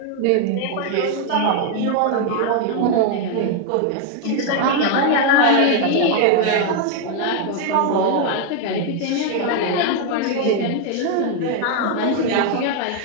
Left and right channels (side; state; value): both; different; correlation 0.01